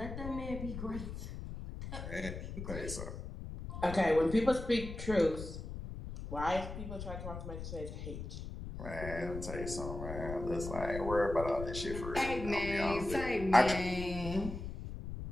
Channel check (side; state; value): left; noise; rumble, 8 dB below the sound